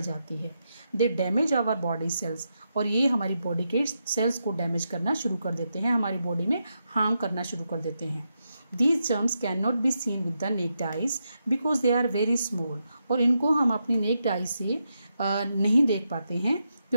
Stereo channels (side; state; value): both; inverted; correlation -0.84